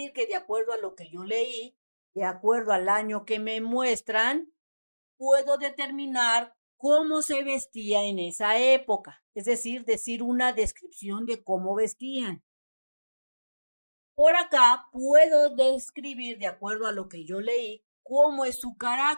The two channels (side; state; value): both; inverted; correlation -1.00